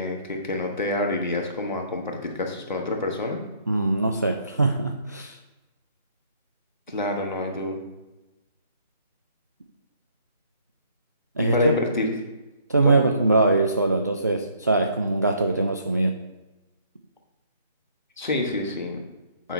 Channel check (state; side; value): inverted; both; correlation -0.63